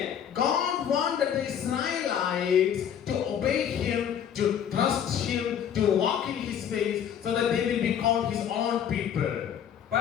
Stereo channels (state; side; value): quieter; right; 8.9 dB